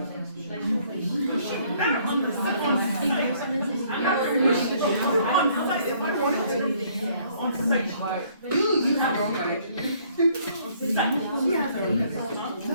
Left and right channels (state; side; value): inverted; both; correlation -0.63